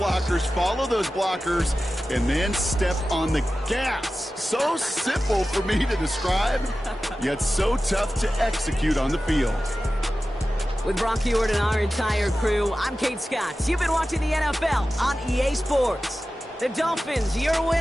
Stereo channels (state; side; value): normal; both; correlation 0.94